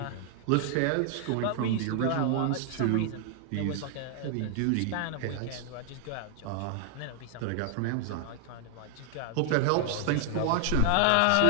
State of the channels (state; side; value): different; both; correlation 0.00